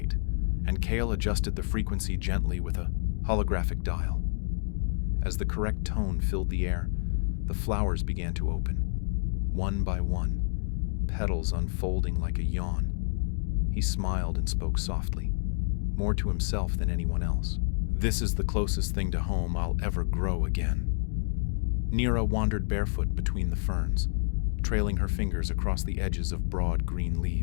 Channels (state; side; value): silent; right; digital silence